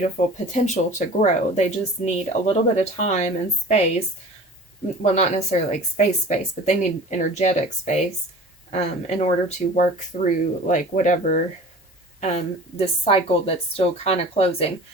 potential to grow. They just need a little bit of time and space. Well, not necessarily like space, but they need energetic space in order to work through like whatever this cycle that's still kind of closing,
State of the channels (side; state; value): both; normal; correlation 0.41